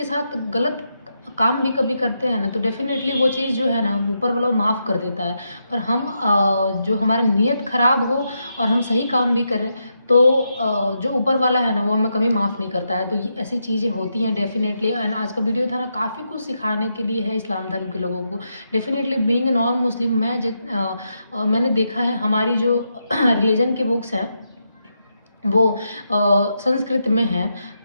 ساتھ غلط کام بھی کبھی کرتے ہیں نا, تو ڈیفینیٹلی وہ چیز جو ہے نا اوپر والا معاف کر دیتا ہے. پر ہم جو ہمارا نیت خراب ہو اور ہم صحیح کام بھی کریں تو جو اوپر والا ہے نا وہ ہمیں کبھی معاف نہیں کرتا ہے. تو یہ ایسی چیزیں ہوتی ہیں ڈیفینیٹلی. اینڈ آج کا ویڈیو تھا نا کافی کچھ سکھانے کے لیے ہے اسلام دھرم کے لوگوں کو. ڈیفینیٹلی بینگ نان مسلم, میں نے دیکھا ہے ہماری جو ریلیجن کے بکس ہیں وہ سنسکرت میں ہیں.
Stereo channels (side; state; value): both; inverted; correlation -0.83